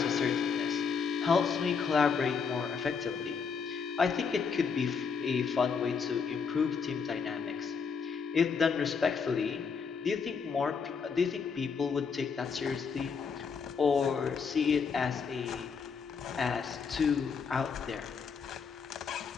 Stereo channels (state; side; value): quieter; right; 5.8 dB